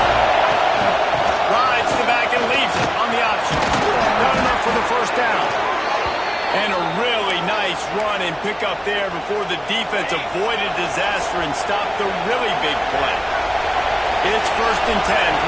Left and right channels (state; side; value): identical; both; correlation 1.00